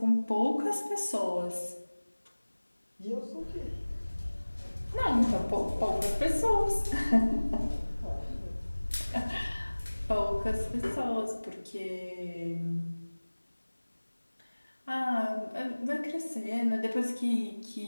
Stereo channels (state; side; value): inverted; both; correlation -1.00